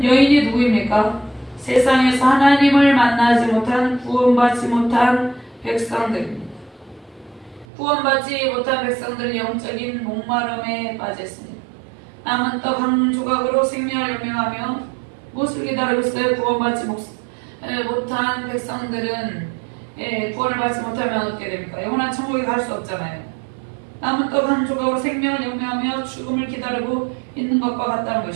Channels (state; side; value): drops out; left; at 7.7 s